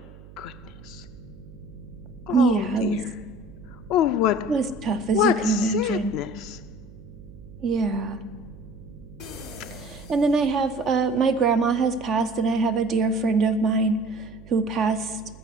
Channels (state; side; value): noise; right; hum, 19 dB below the sound